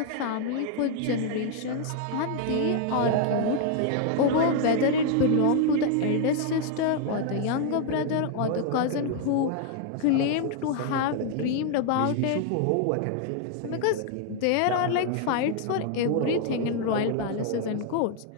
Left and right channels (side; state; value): both; different; correlation 0.00